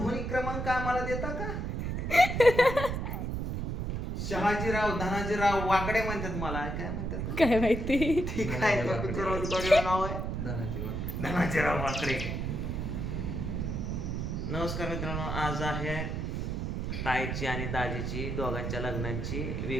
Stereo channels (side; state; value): right; noise; rumble, 2 dB below the sound